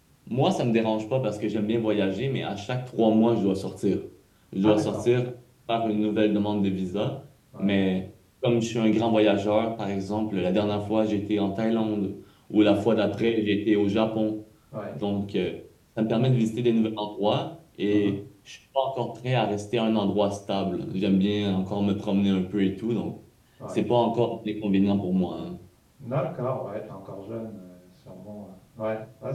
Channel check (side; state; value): both; identical; correlation 1.00